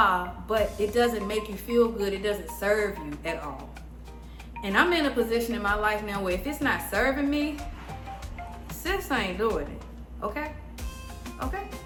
But it doesn't make you feel good. It doesn't serve you at all. And I'm in a position in my life now where if it's not serving me, sis ain't doing it. Okay? Okay?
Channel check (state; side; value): identical; both; correlation 1.00